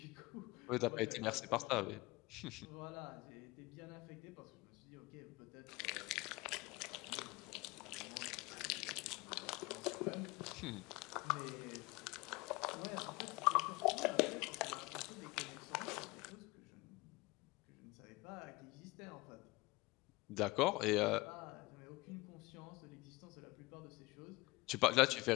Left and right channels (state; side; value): quieter; right; 22.4 dB